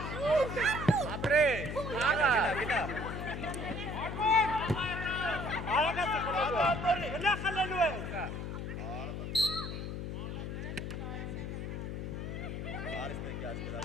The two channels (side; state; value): left; noise; hum, 5 dB below the sound